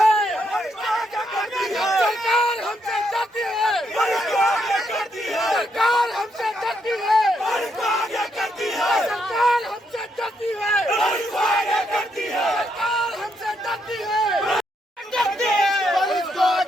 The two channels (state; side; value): normal; both; correlation 0.77